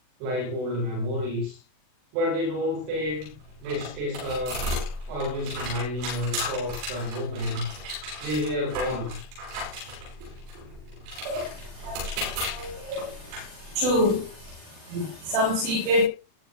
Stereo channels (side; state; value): left; late; 40 ms